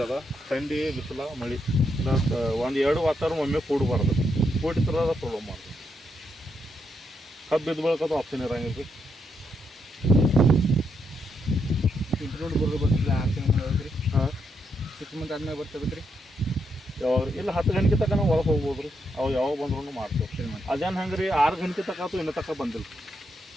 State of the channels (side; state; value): both; normal; correlation 0.80